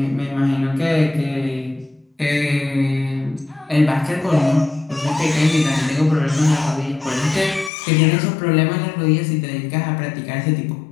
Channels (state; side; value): drops out; right; at 7.7 s